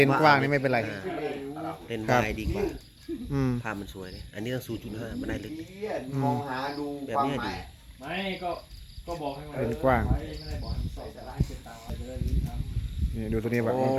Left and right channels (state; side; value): identical; both; correlation 1.00